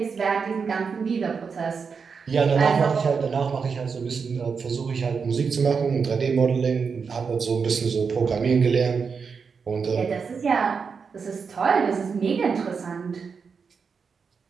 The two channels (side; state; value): left; quieter; 5.6 dB